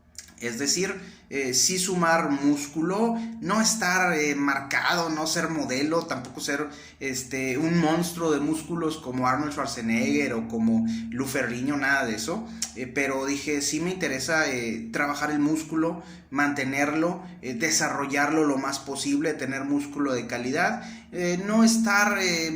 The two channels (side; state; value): both; identical; correlation 1.00